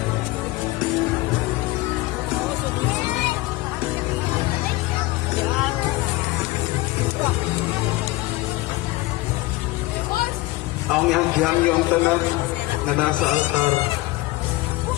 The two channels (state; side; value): quieter; right; 19.9 dB